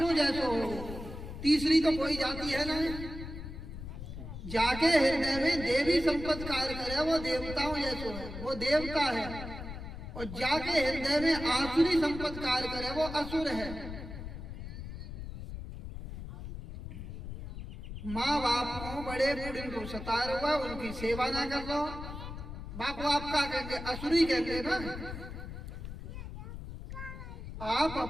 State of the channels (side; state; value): left; noise; rumble, 9 dB below the sound